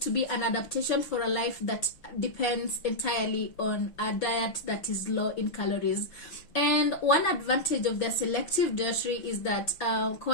to be an adaptation for a life that depends entirely on a diet that is low in calories. And one advantage of their selective dietary is that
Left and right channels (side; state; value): right; late; 6.0 ms